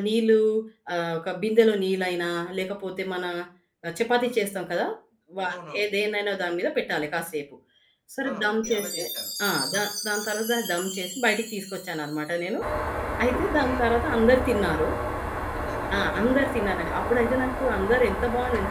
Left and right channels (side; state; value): both; identical; correlation 1.00